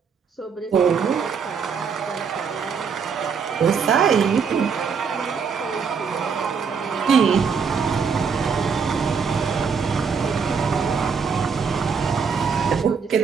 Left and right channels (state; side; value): quieter; left; 6.0 dB